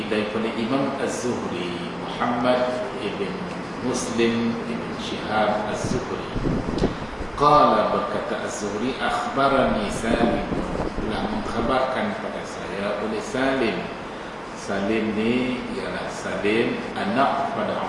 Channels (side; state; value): both; identical; correlation 1.00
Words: daripada Imam az-Zuhri Muhammad ibn Muslim ibn Shihab az-Zuhri. Qala, berkata az-Zuhri, akhbarani Salim, telah mengkhabarkan pada saya oleh Salim. Salim ni ialah Salim anak pada